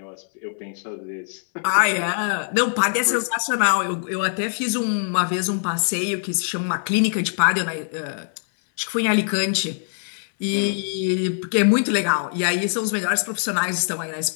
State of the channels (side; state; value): right; silent; 61 dB below the other